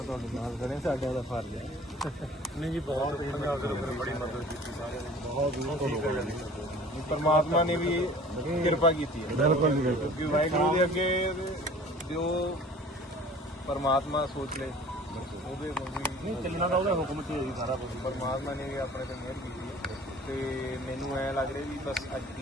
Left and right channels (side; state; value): both; normal; correlation 0.47